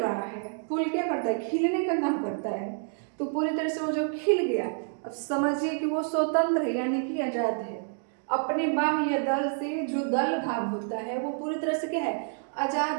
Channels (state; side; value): silent; left; 59 dB below the other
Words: है, फूल क्या करता है, खिलने का काम करता है। तो पूरी तरह से वो जो खिल गया, अब समझिए कि वो स्वतंत्र है, यानी कि आजाद है। अपने बाह्य दल से जो दल भाग होता है वो पूरी तरह से क्या है,